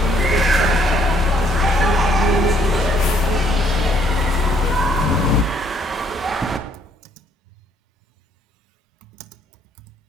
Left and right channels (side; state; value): both; normal; correlation 0.66